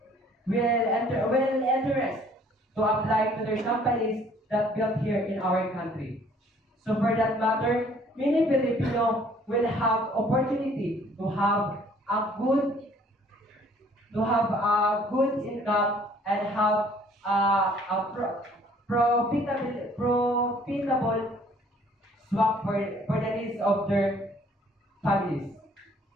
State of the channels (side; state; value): both; normal; correlation 0.58